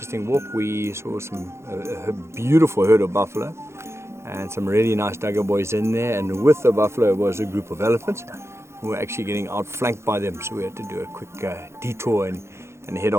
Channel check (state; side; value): late; left; 0.13 ms